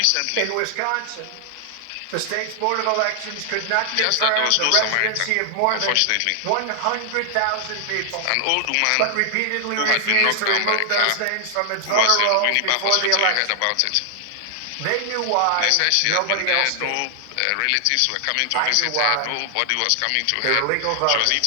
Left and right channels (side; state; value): both; different; correlation 0.00